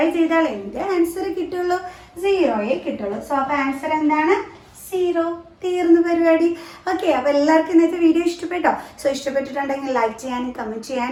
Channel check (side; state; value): both; identical; correlation 1.00